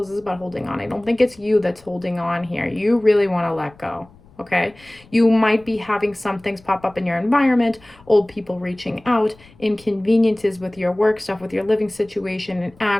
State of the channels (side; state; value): left; noise; rumble, 27 dB below the sound